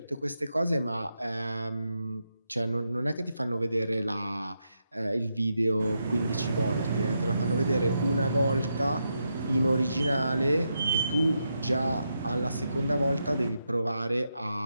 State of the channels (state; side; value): inverted; both; correlation -0.84